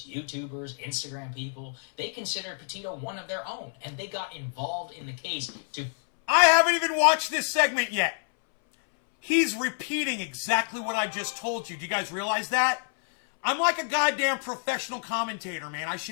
YouTubers, Instagram people, they considered Petito one of their own, and they got involved in the case to... I haven't even watched this segment yet. He's repeating exactly what I just told you. Do you guys realize that? I'm like a goddamn professional commentator, man. I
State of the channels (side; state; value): right; silent; 59 dB below the other